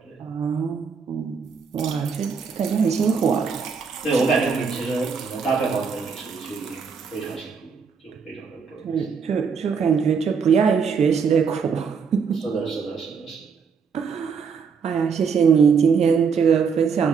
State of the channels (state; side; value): quieter; left; 5.9 dB